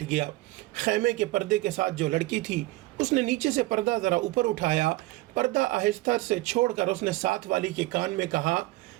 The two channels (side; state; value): left; quieter; 19.7 dB